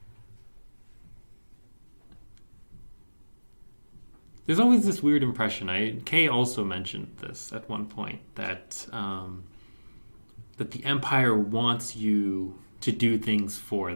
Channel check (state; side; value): inverted; both; correlation -1.00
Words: There's always this weird impression. Kay also mentioned this at one point, that the Empire wants you to do things for